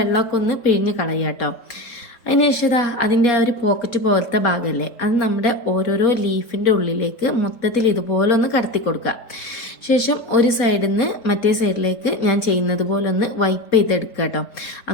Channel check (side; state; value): right; late; 4.2 ms